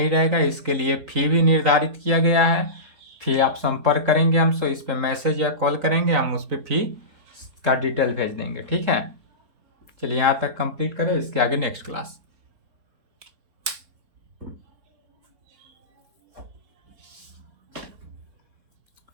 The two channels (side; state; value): left; late; 4.0 ms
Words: रहेगा, इसके लिए फी भी निर्धारित किया गया है। फी आप संपर्क करेंगे हमसे, इस पे मैसेज या कॉल करेंगे, हम उस पर फी का डिटेल भेज देंगे, ठीक है। चलिए यहाँ तक कंप्लीट करें, इसके आगे नेक्स्ट क्लास।